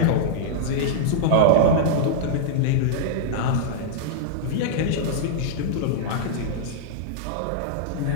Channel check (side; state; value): both; different; correlation -0.02